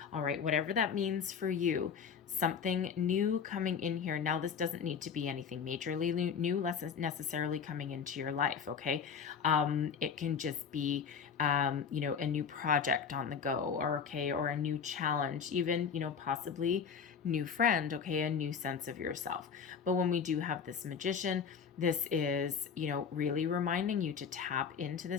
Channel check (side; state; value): right; quieter; 6.7 dB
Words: All right, whatever that means for you, something new coming in here. Now, this doesn't need to be anything majorly new, less necessarily coming into your life, okay? It can just be, a new project on the go, or a new challenge, even, possibly new friend, okay, a new sense of yourself. But when we do have this Magician, this is, really reminding you to tap into